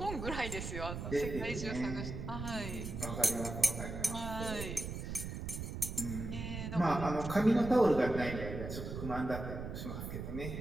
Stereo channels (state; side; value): noise; right; rumble, 6 dB below the sound